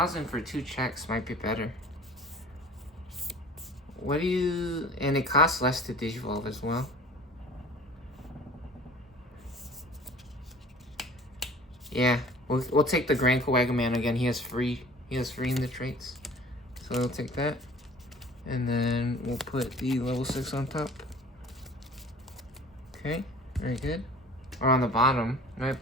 for 2 checks might be better. What do you... And it costs less to Digivolve as well. Yeah, we'll take the Grand Kawagaman again. He has free in the traits. So we'll take that. And then we'll put the level 6 on top. Okay, very good. Or on the bottom, right?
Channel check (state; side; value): normal; both; correlation 0.45